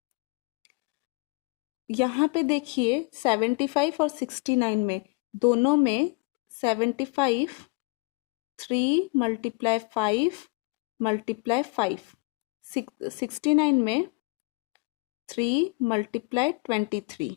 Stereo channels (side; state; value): right; quieter; 30.0 dB